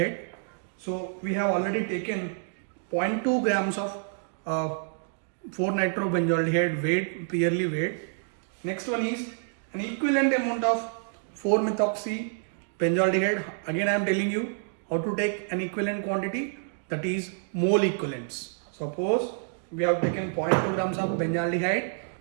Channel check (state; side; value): silent; left; digital silence